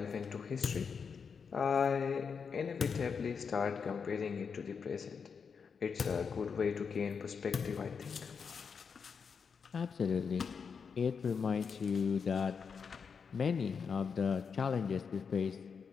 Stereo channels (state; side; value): quieter; right; 6.0 dB